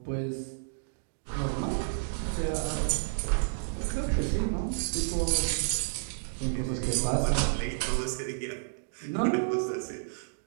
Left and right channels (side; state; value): left; silent; digital silence